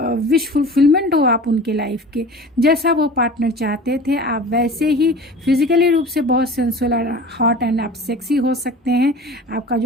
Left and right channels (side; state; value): both; normal; correlation 0.39